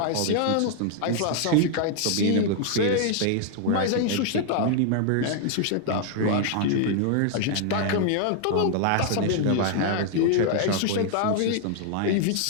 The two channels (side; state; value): both; different; correlation 0.00